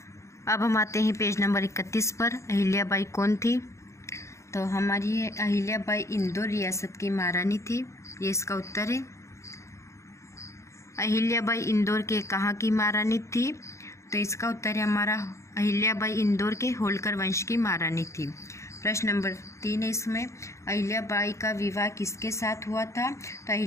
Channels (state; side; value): late; right; 0.14 ms